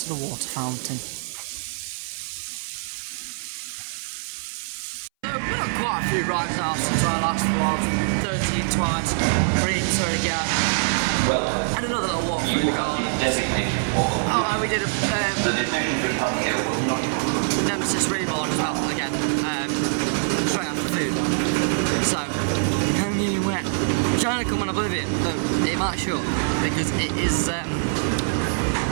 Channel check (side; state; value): left; silent; 60 dB below the other